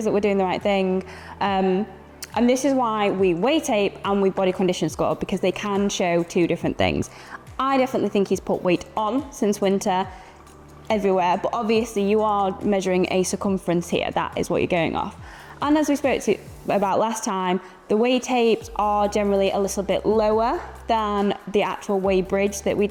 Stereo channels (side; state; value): both; identical; correlation 1.00